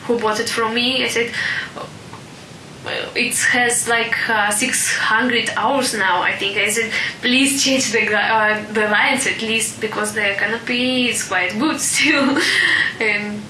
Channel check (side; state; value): both; identical; correlation 1.00